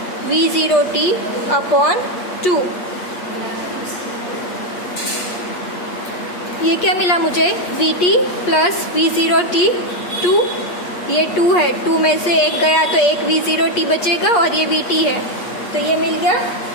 v0t अपॉन 2। ये क्या मिला मुझे, vt प्लस v0t 2, ये 2 है, 2 में से एक गया तो एक v0t बचेगा और ये vt है, तो ये मिल गया।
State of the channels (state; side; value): late; right; 8.4 ms